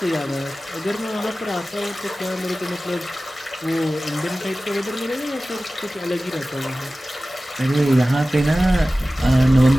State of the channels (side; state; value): both; normal; correlation 0.96